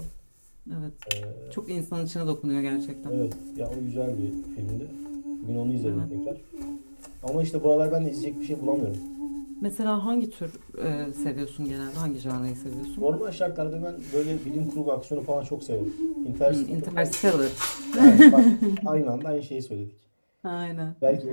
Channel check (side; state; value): both; inverted; correlation -1.00